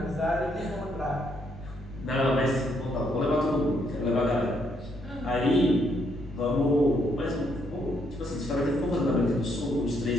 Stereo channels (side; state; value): both; normal; correlation 0.73